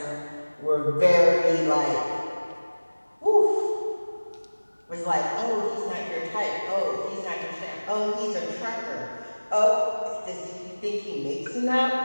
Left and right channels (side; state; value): both; inverted; correlation -1.00